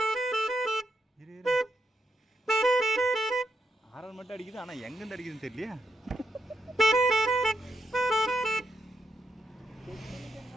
ஆறு மட்டும் அடிக்குது. ஆனால் எங்கேருந்து அடிக்குதுன்னு தெரியலையா?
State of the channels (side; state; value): both; normal; correlation 0.81